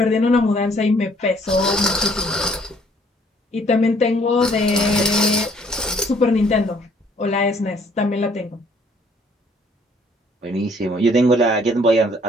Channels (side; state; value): both; normal; correlation 0.62